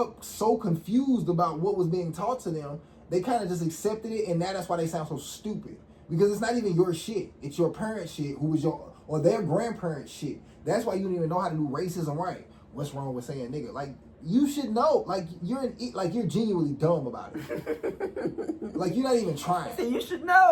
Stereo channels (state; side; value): identical; both; correlation 1.00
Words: up so confused about what was being taught to them, they kind of just accepted it, and now that's why they sound so stupid. Because it's not even your shit. It's your parents' shit, who was your, or their grandparents' shit. That's why you don't even know how to do racism right. What's wrong with saying nigga? Like, you should know. Like, you're genuinely dumb about it. Like, you're not even trying. You should